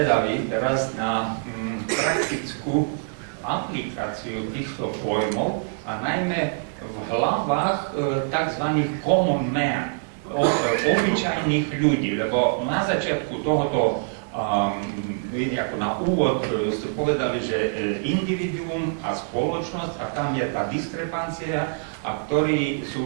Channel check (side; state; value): left; silent; digital silence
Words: teraz na praktickú aplikáciu týchto pojmov a najmä v hlavách tzv. Common man, obyčajných ľudí, lebo na začiatku tohoto, ako na úvod ste povedali, že individuum a spoločnosť a tam je tá diskrepancia a ktorí